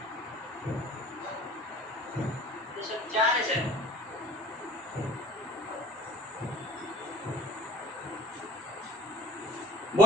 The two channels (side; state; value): both; normal; correlation 0.42